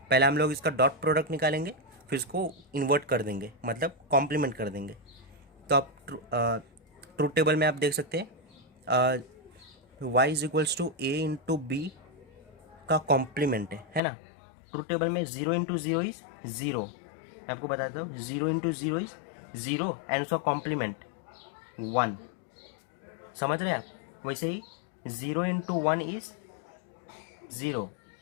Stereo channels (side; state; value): right; drops out; at 14.0 s